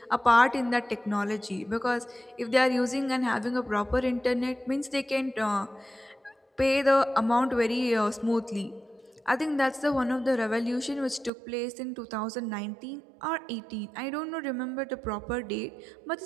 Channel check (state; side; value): drops out; left; at 11.3 s